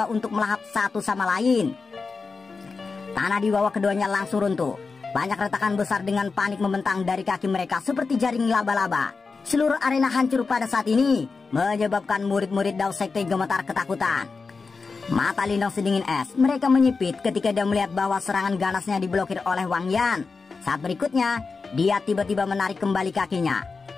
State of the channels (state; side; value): quieter; right; 4.5 dB